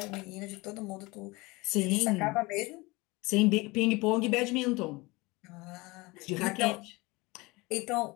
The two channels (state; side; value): quieter; right; 23.5 dB